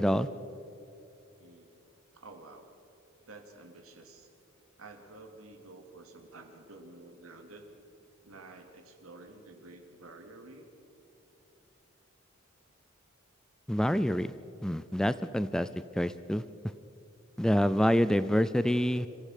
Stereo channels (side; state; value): both; normal; correlation 0.96